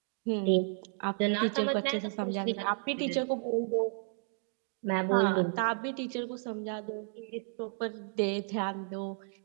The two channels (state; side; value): silent; left; digital silence